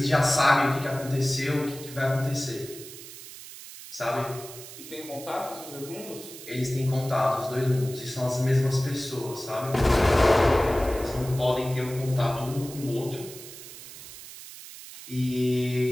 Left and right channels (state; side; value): noise; right; hiss, 14 dB below the sound